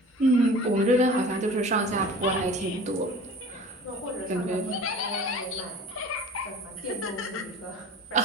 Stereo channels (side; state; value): both; normal; correlation 0.41